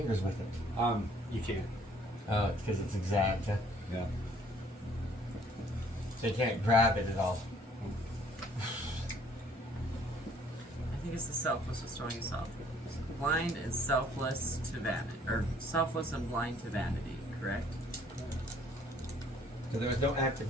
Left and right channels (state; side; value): normal; both; correlation 0.59